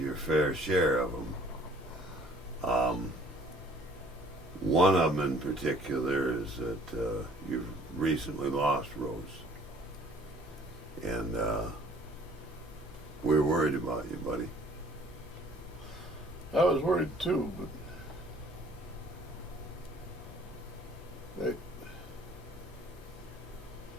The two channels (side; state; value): both; normal; correlation 0.56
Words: fair share of them. One of them in particular is that you've recently lost Rose, and we're worried about you, buddy. I was worried too, but